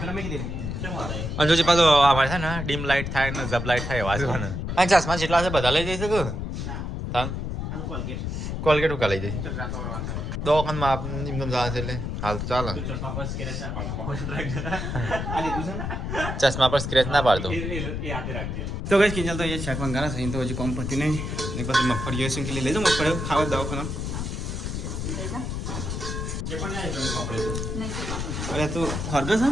પેલા મેં કીધું કેમ વાળા અને જો પાછો અમારે છે ને ડીમ લાઇટ થાય ને જબ લાઇટ થાય એવા છે ને અને ચશ્મા જેટલા છે બધા લઈ જઈ શકો ના તાન આ કોલગેટ કોલગેટ ઉકા લઈ જઈ ચકરા થવાનું છે દવાખાનમાં આપ એમ જવા છે એટલે હાલ તો ચાલે ચશ્મા પર સ્કેચ ના પાડો આ લીધું છે ને ચશ્મા પર સ્ક્રેચ ના પાડતો એ હાથે રાખજે તો કઈ કિંજલ તો એ શાક મંગાના છે તો હજી કોમ પડતી નહીં એક પછી મગફળી છે કે લઈ જાઓ મગફળી ખાવા દવાખાના કે પણ નહીં કરું આપણે નહીં તો કામ. અરે તું હરગસ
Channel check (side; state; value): left; noise; rumble, 4 dB below the sound